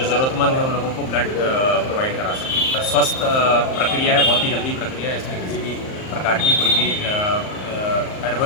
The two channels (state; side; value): late; right; 38 ms